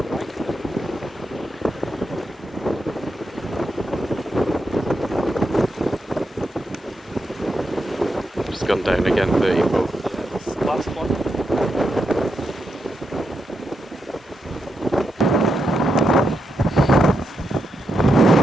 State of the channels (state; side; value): normal; both; correlation 0.84